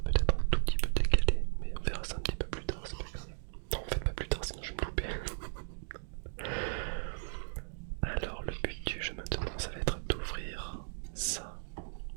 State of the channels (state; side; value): silent; left; digital silence